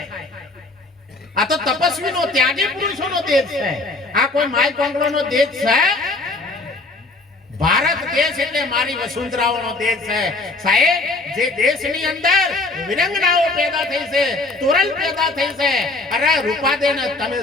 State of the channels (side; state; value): right; quieter; 3.2 dB